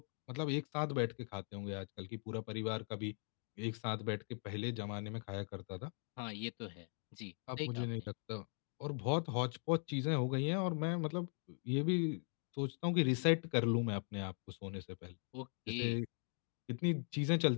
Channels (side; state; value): right; silent; 51 dB below the other